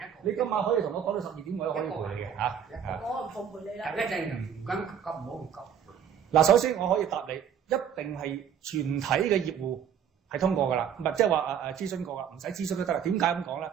你今晚可以同我講到12點，我都可以陪你嘅嚇。我唔奉陪你啦。一陣唔緊急，唔好唔急。嗱，首先我可以答你。一定係全體嘅業戶係通過㗎啦，唔係即係話諮詢過㗎，唔使諮詢都得啦。點解咁講咧？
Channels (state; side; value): quieter; left; 8.4 dB